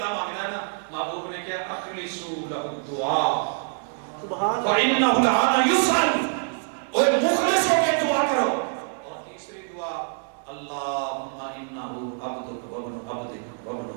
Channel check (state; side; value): silent; left; 61 dB below the other